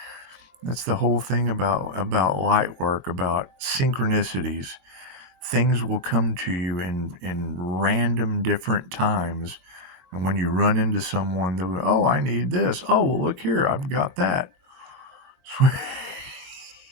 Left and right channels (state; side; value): late; left; 22 ms